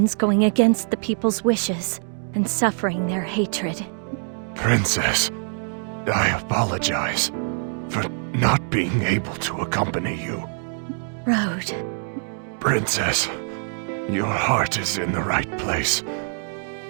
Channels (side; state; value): left; silent; 60 dB below the other